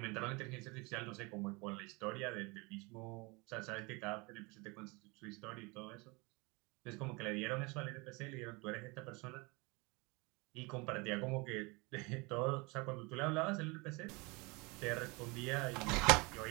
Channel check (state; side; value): quieter; left; 27.0 dB